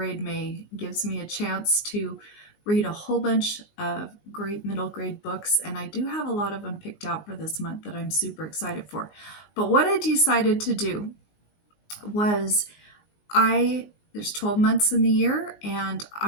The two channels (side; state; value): right; late; 19 ms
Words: May. It gives me a chance to read a whole bunch of great middle grade books, and I do have a lot of them picked out for this month that I'm super excited for. But what I decided to do was there's 12 months in the year, and